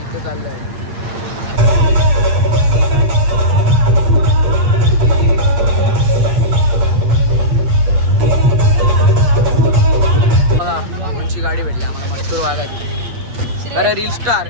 चाललो आहे. बघा कोणची गाडी भेटली आम्हाला, मस्तूर वाघाची. अरे रील स्टार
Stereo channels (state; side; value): late; left; 8.3 ms